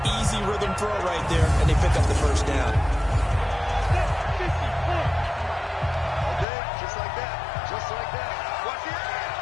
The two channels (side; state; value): right; drops out; at 6.5 s